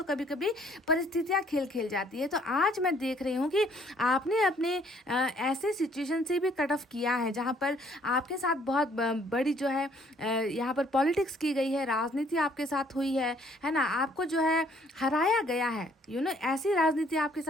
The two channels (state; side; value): normal; both; correlation 0.62